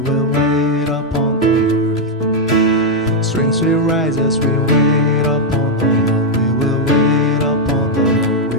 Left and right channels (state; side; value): normal; both; correlation -0.01